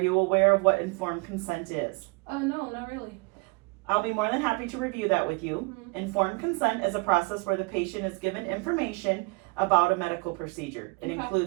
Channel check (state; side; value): quieter; left; 29.2 dB